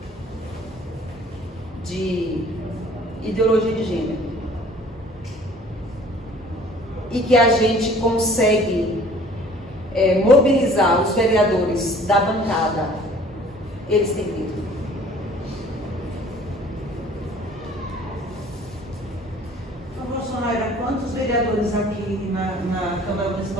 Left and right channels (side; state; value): both; normal; correlation 0.52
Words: de ideologia de gênero e que a gente consegue mobilizar os vereadores da bancada, eles têm medo. Bolsonaro, quantos vereadores aqui na Câmara